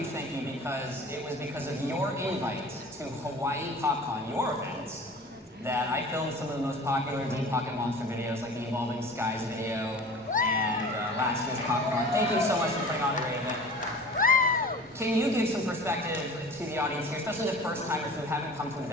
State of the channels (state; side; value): normal; both; correlation 0.41